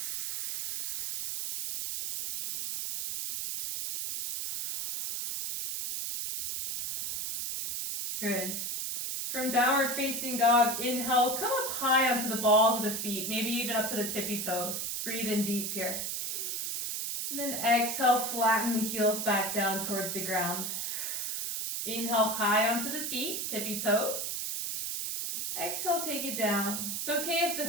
Good. From downward facing dog, inhale, come up high onto the balls of the feet, maybe even up to the tippy toes. Breathe in deep here. And then exhale, flatten the heels back down towards the ground. Inhale high onto the feet, tippy toes. Exhale, take it down. It's okay if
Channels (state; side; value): noise; right; hiss, 2 dB below the sound